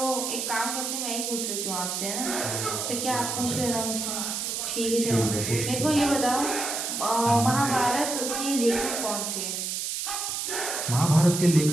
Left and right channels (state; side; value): noise; right; hiss, 3 dB below the sound